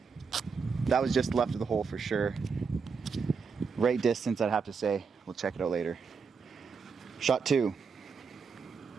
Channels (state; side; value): quieter; left; 5.4 dB